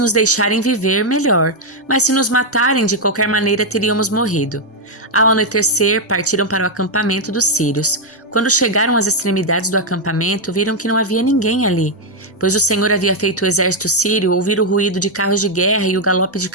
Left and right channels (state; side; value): normal; both; correlation 0.00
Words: deixarem viver, melhor, mas se nos matarem, de qualquer maneira teríamos morrido. Ao anoitecer, partiram para o acampamento dos sírios. Quando chegaram às extremidades do acampamento, viram que não havia ninguém ali, pois o Senhor havia feito o exército sírio ouvir o ruído de carros de guerra e o galope de